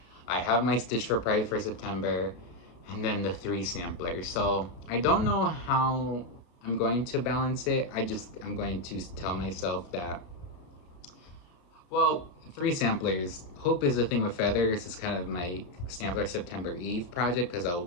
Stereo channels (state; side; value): late; right; 33 ms